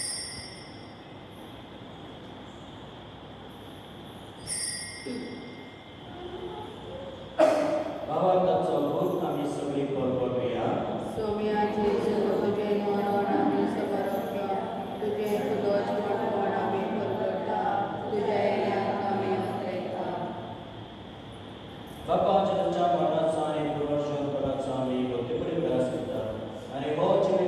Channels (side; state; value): both; identical; correlation 1.00